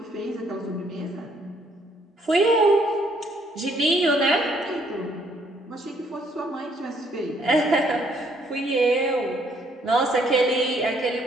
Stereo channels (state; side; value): normal; both; correlation 0.67